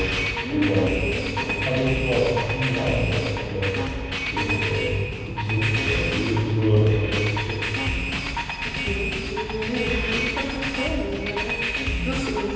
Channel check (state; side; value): identical; both; correlation 1.00